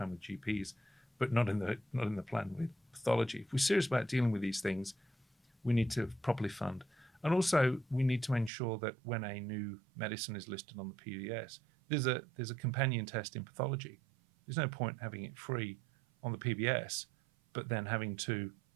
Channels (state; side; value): drops out; left; at 8.5 s